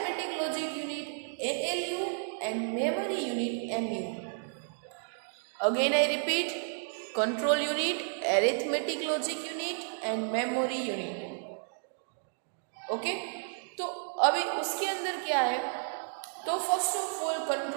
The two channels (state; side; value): silent; left; digital silence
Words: logic unit ALU and memory unit MU. Again I repeat, control unit, arithmetic logic unit and memory unit. Okay? तो अभी उसके अंदर क्या है? तो first of all